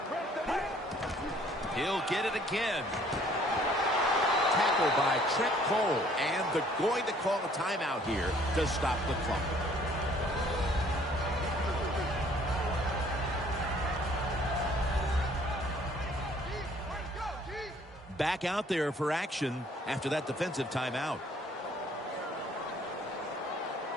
He'll get it again. Tackled by Trent Cole, and they're going to call a timeout here to stop the clock. Back out there for action after that defensive timeout.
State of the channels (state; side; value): normal; both; correlation 0.59